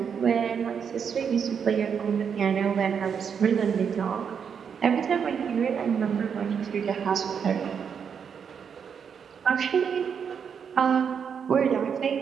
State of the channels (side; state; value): left; quieter; 7.0 dB